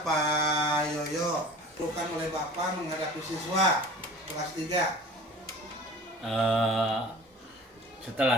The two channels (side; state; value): both; normal; correlation 0.42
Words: Pak Yoyo, bukan oleh Bapak menghadapi siswa kelas 3.